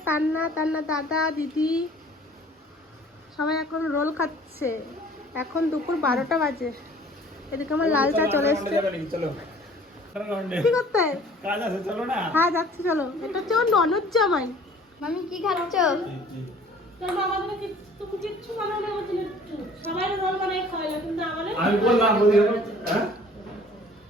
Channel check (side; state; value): both; normal; correlation 0.51